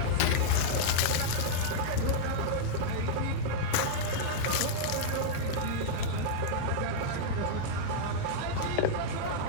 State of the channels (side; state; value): both; different; correlation -0.02